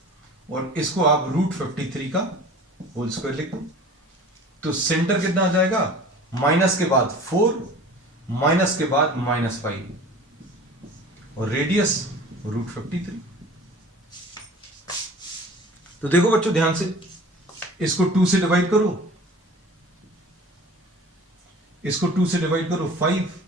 और इसको आप रूट 53 का होल स्क्वायर लिख दो। तो सेंटर कितना आ जाएगा? माइनस के बाद 4, माइनस के बाद माइनस 5 और रेडियस रूट 53। तो देखो बच्चों ध्यान से, इसको 2 से डिवाइड करो, इसको 2 से डिवाइड करो 5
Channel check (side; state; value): both; normal; correlation 0.43